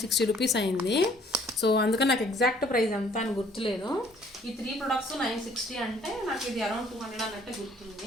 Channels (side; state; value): both; normal; correlation 0.59